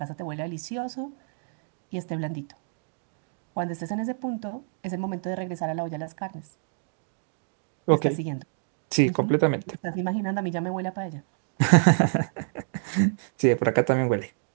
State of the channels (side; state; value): left; silent; digital silence